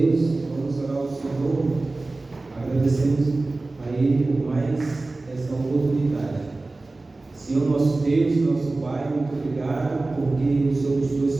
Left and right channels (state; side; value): quieter; left; 3.2 dB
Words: Vamos orar ao Senhor, agradecemos a Ele por mais essa oportunidade. Senhor, nosso Deus, nosso Pai, muito obrigado porque o Senhor nos